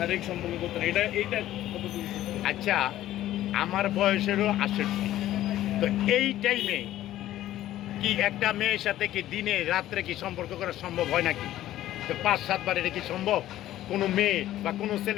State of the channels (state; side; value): quieter; right; 13.7 dB